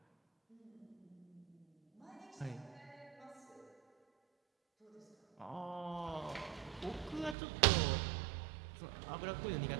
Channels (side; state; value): left; drops out; at 7.4 s